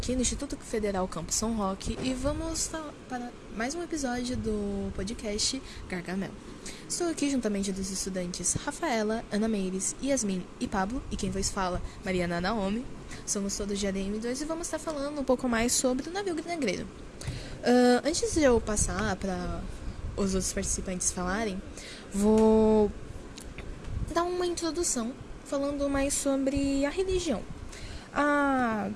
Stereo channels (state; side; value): identical; both; correlation 1.00